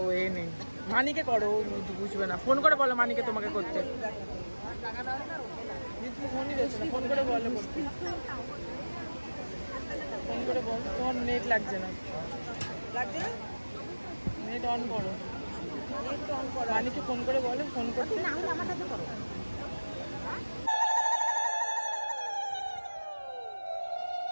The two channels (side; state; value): both; inverted; correlation -1.00